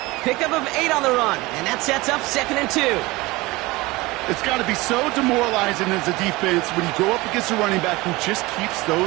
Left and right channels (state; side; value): quieter; left; 21.5 dB